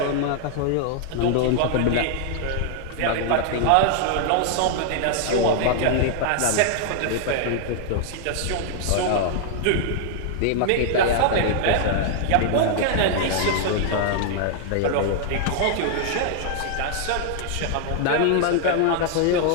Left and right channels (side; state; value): both; different; correlation 0.00